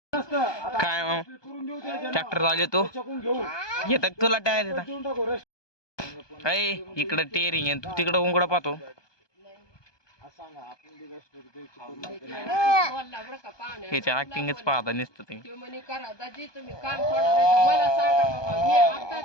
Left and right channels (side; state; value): right; late; 1.2 ms